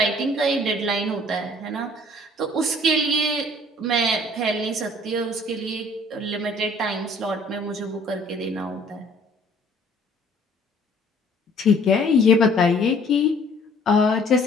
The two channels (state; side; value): normal; both; correlation 0.56